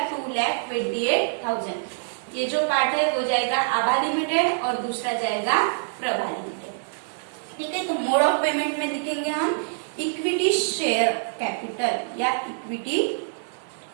2,28,000। ये जो पार्ट है वो जाएगा आभा लिमिटेड और दूसरा जाएगा प्रभा लिमिटेड। ठीक है, तो मोड ऑफ पेमेंट में लिखेंगे हम इक्विटी शेयर कैपिटल या इक्विटी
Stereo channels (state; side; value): silent; left; digital silence